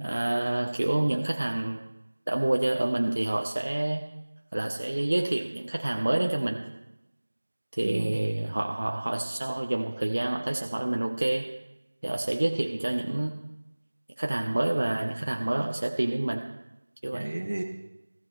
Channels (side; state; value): both; inverted; correlation -1.00